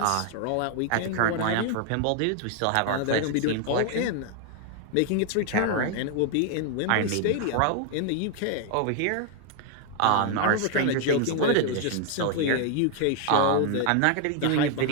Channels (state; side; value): different; both; correlation 0.00